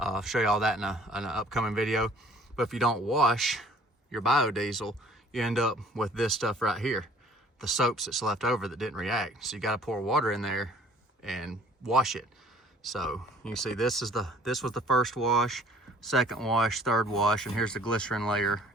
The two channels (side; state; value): both; normal; correlation 0.55